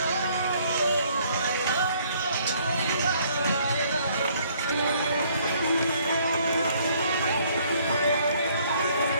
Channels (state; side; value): inverted; both; correlation -0.63